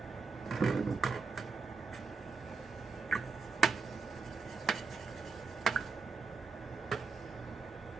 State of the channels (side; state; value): left; quieter; 4.8 dB